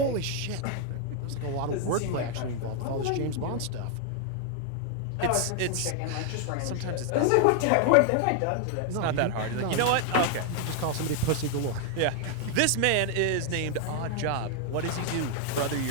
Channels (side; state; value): both; different; correlation 0.00